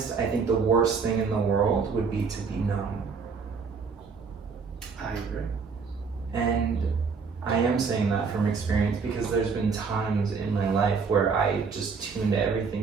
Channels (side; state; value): left; quieter; 5.2 dB